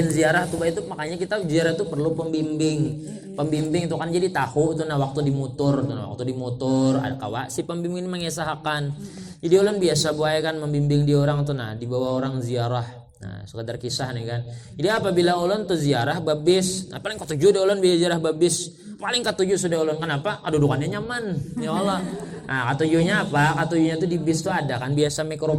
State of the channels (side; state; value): both; identical; correlation 1.00